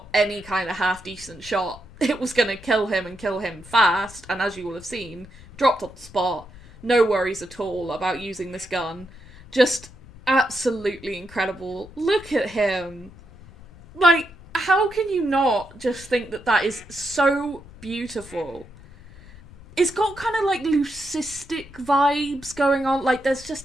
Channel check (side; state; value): left; noise; rumble, 20 dB below the sound